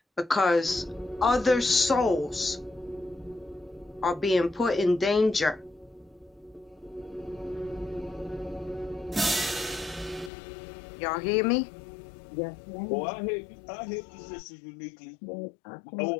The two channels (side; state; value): right; drops out; at 10.3 s